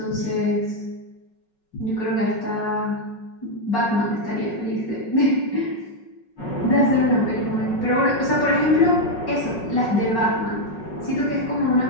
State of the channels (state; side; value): late; right; 5.4 ms